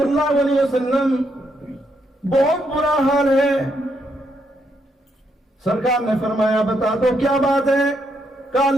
اللہ علیہ وسلم بہت برا حال ہے. سرکار نے فرمایا بتا دو کیا بات ہے؟ کہا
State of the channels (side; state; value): both; normal; correlation 0.77